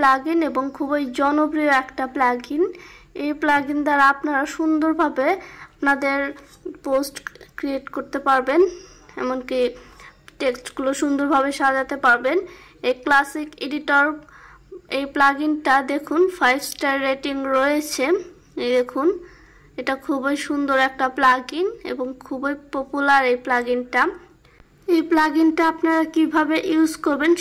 এবং খুবই জনপ্রিয় একটা প্লাগইন। এই প্লাগইন দ্বারা আপনারা সুন্দরভাবে আপনাদের পোস্ট ক্রিয়েট করতে পারবেন, এমনকি টেক্সটগুলো সুন্দরভাবে সাজাতে পারবেন। এই ক্লাসিক এডিটর এই প্লাগইনটা দেখুন 5 স্টার রেটিং রয়েছে। এই দেখুন, এটা খুবই সুন্দর একটা প্লাগইন এবং খুবই পপুলার এই প্লাগইনটা। এই প্লাগইনটা আপনারা কিভাবে ইউজ করবেন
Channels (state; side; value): identical; both; correlation 1.00